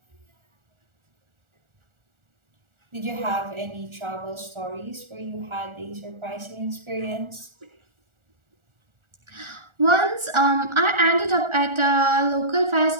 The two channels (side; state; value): left; late; 1.4 ms